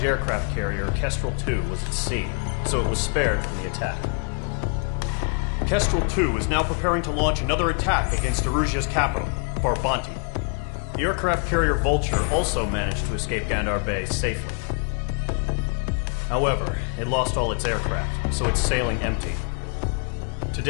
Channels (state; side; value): quieter; right; 39.2 dB